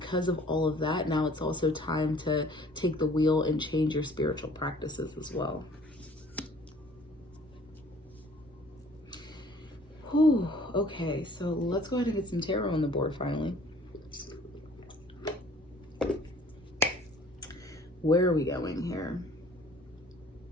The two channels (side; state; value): both; normal; correlation 0.53